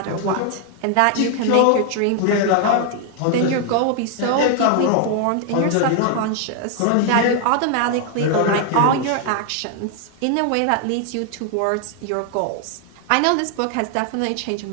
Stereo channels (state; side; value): different; both; correlation 0.00